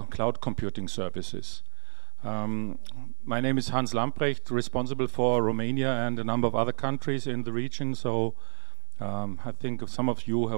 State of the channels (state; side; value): silent; left; 54 dB below the other